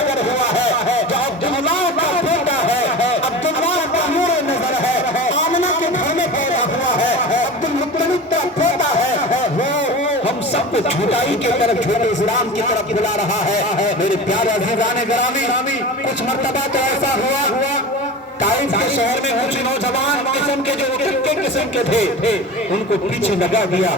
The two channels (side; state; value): both; normal; correlation 0.32